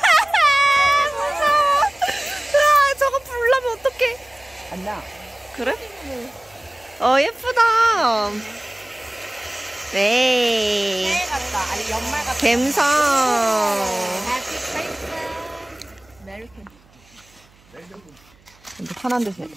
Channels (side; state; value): right; noise; hum, 30 dB below the sound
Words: 저거 불나면 어떡해. 안 나. 그래? 예쁘다. 네. 같다. 아니 연말 같다. 갬성. 근데 편한 데서.